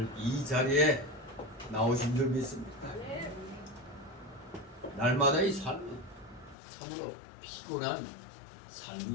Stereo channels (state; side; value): drops out; right; at 6.6 s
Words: 이 자리에 나오신 줄 믿습니다. 날마다의 삶은 참으로 피곤한